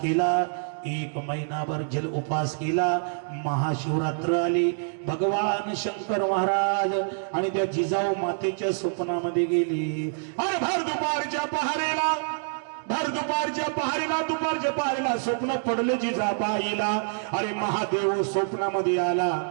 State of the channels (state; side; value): silent; left; digital silence